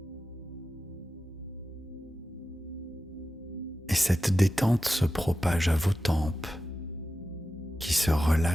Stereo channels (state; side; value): normal; both; correlation 0.92